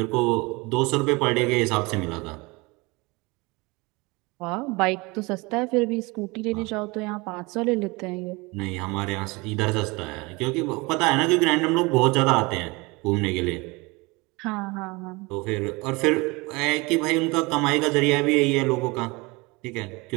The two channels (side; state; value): left; quieter; 25.3 dB